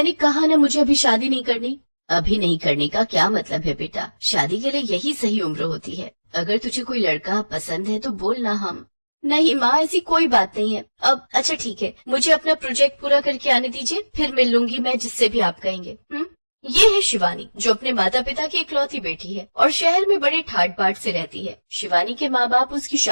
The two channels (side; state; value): both; inverted; correlation -1.00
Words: कहा ना मुझे अभी शादी नहीं करनी। अभी नहीं करने का क्या मतलब है बेटा, शादी के लिए यही सही उम्र होती है। अगर तुझे कोई लड़का पसंद है तो बोलना। हम नहीं माँ, ऐसी कोई बात नहीं है। अब अच्छा ठीक है, मुझे अपना प्रोजेक्ट पूरा करके आने दीजिए, फिर मिल लूंगी मैं जिससे भी आप कहेंगे। ये है शिवानी, जो अपने माता पिता की इकलौती बेटी है और शहर में बड़े ठाट बाट से रहती है। शिवानी के माँ बाप उसकी